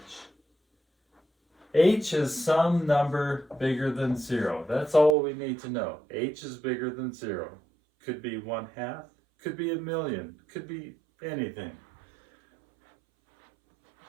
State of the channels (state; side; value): drops out; left; at 5.2 s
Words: H is some number bigger than 0. That's all we need to know. H is bigger than 0. Could be 1/2, could be 1,000,000, could be anything.